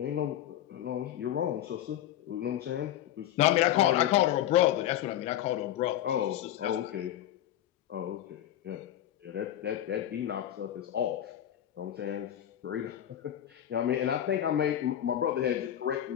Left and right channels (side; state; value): right; quieter; 11.8 dB